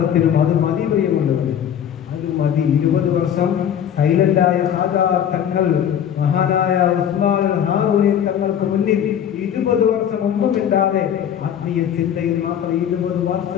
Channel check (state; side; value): quieter; right; 9.3 dB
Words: അത് മതി പ്രിയമുള്ളത്, അത് മതി. 20 വർഷം സൈലന്റായ ഖാജാ തങ്ങൾ, മഹാനായ ഉസ്മാൻ ഹാറൂനി തങ്ങൾക്ക് മുന്നിൽ 20 വർഷം ഒന്നുമില്ലാതെ ആത്മീയ ചിന്തയിൽ മാത്രം 20